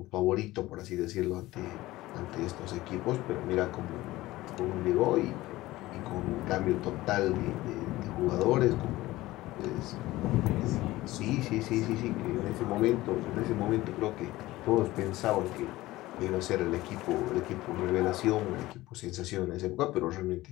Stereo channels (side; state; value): right; quieter; 17.8 dB